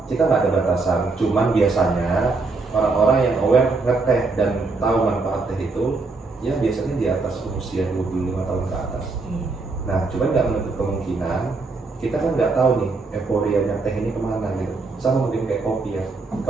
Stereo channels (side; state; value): left; quieter; 3.8 dB